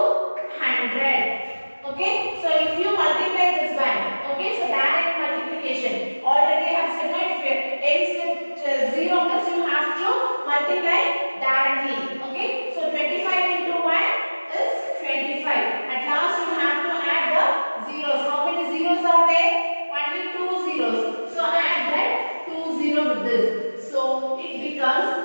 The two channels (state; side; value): inverted; both; correlation -1.00